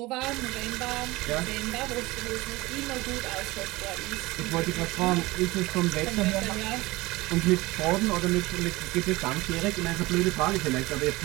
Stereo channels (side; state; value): left; quieter; 20.8 dB